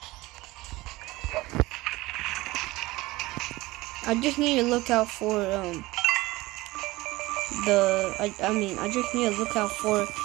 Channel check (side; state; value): left; quieter; 19.9 dB